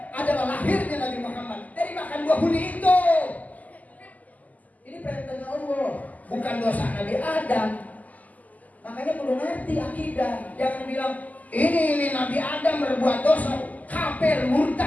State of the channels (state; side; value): late; right; 0.078 ms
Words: adalah lahirnya Nabi Muhammad dari makan buah huldi itu. Ini perintahnya Allah, bukan dosa Nabi Adam. Makanya perlu ngerti akidah. Jangan bilang ini Nabi Adam berbuat dosa, kafir,